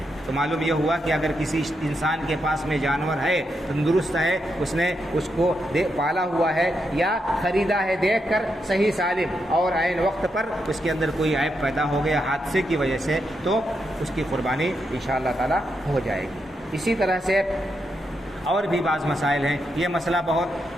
تو معلوم یہ ہوا کہ اگر کسی انسان کے پاس میں جانور ہے، تندرست ہے، اس نے اس کو پالا ہوا ہے یا خریدا ہے دیکھ کر صحیح سالم، اور عین وقت پر اس کے اندر کوئی عیب پیدا ہو گیا حادثے کی وجہ سے، تو اس کی قربانی انشاءاللہ تعالی ہو جائے گی۔ اسی طرح سے اور بھی بعض مسائل ہیں، یہ مسئلہ بہت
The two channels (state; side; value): normal; both; correlation 0.83